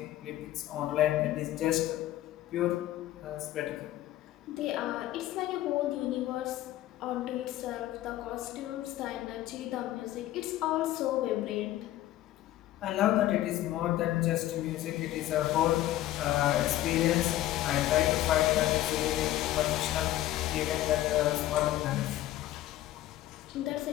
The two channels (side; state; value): right; quieter; 14.4 dB